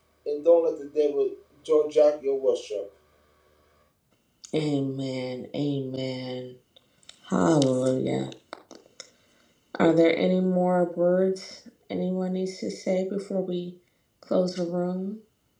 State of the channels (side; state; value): both; identical; correlation 1.00